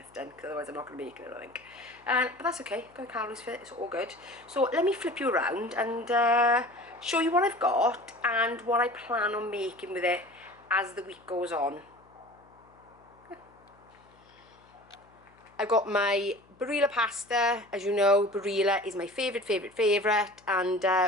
done, because otherwise I'm not going to make it, I think. But that's okay, got calories for it, it's all good. So let me flip you around and show you what I've got and what I plan on making with it as the week goes on. I've got my Barilla Pasta. As you know, Barilla is my favourite, and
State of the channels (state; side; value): noise; left; hum, 29 dB below the sound